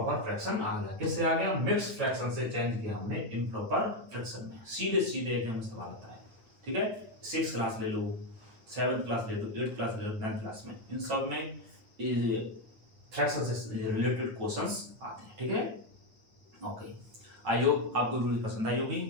फ्रैक्शन आ गया, किससे आ गया, मिक्स फ्रैक्शन से चेंज किया हमने इम्प्रॉपर फ्रैक्शन में। सीधे सीधे एग्जाम में सवाल आता है, ठीक है। 6th क्लास ले लो, 7th क्लास ले लो, 8th क्लास ले लो, 9th क्लास में, इन सब में फ्रैक्शन से रिलेटेड क्वेश्चंस आते हैं, ठीक है। ओके, आई होप आपको वीडियो पसंद आई होगी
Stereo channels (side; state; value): left; late; 9.2 ms